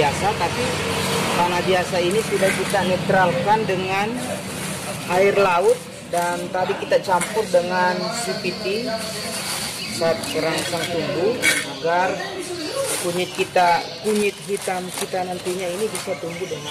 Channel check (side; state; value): both; identical; correlation 1.00